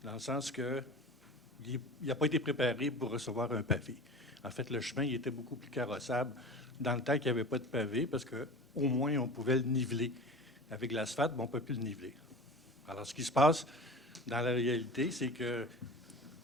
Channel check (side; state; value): both; normal; correlation 0.35